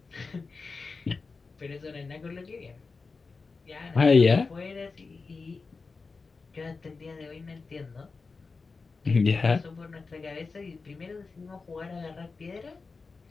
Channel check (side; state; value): right; quieter; 4.3 dB